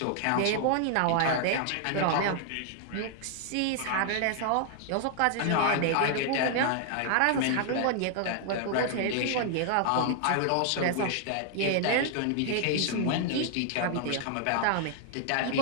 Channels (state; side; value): different; both; correlation 0.00